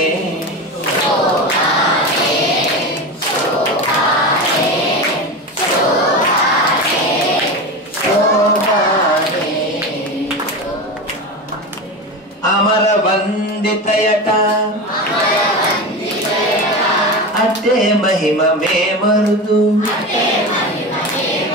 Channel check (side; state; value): both; normal; correlation 0.24